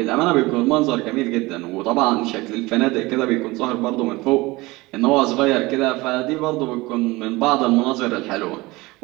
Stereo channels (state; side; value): quieter; left; 21.6 dB